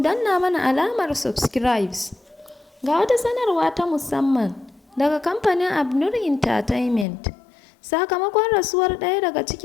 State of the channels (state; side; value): drops out; right; at 7.1 s